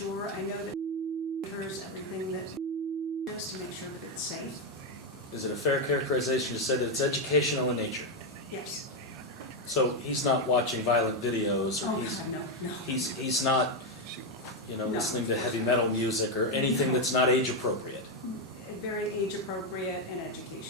I know that monitors everything that is to make sure that it's safe. Is it a fair characterization to say that it's educational in nature? Yes. So he's not watching violent videos, or Oh, God, no. he's not, No, listening to of course heavy not. metal music or anything No. that's not age appropriate. Very age appropriate and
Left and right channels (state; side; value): normal; both; correlation 0.05